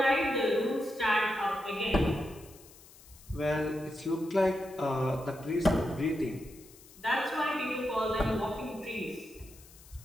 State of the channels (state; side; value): noise; left; hiss, 22 dB below the sound